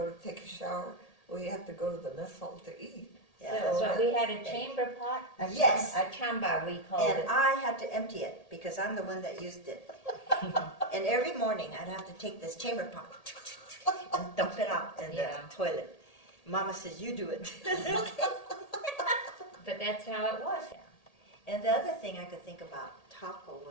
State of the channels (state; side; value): late; right; 1.8 ms